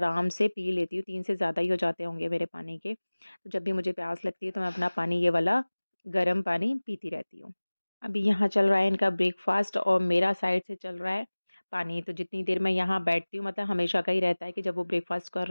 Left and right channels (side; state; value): both; inverted; correlation -1.00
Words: से पी लेती हूँ। 3 से ज़्यादा ही हो जाते होंगे मेरे पानी के। तो जब भी मुझे प्यास लगती है, तो मैं अपना पानी ये वाला गर्म पानी पीती रहती हूँ। अभी यहाँ चल रहा है इनका ब्रेकफ़ास्ट और मेरा साइड से चल रहा है पानी। तो जितनी देर मैं यहाँ बैठती हूँ, मतलब हमेशा का ही रहता है कि जब वो ब्रेकफ़ास्ट कर